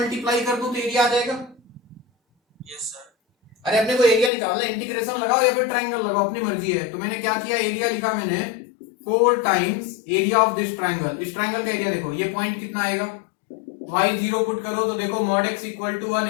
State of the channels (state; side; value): drops out; right; at 4.3 s